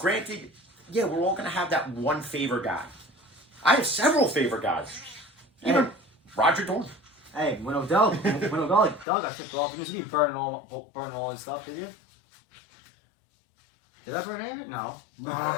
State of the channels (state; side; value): drops out; right; at 9.1 s